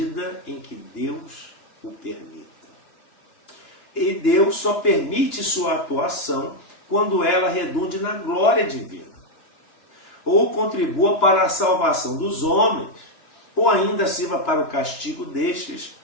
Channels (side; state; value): right; late; 2.9 ms